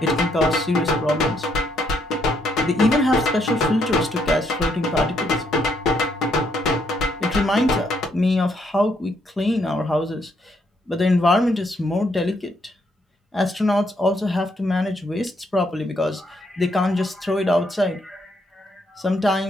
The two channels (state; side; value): normal; both; correlation 0.74